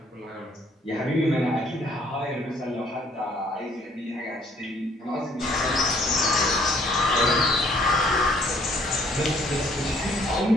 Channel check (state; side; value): normal; both; correlation 0.62